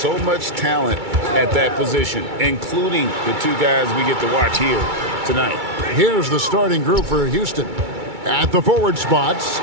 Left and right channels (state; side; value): late; left; 2.3 ms